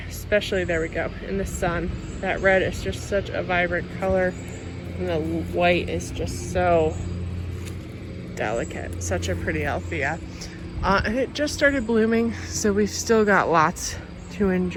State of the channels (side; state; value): both; identical; correlation 1.00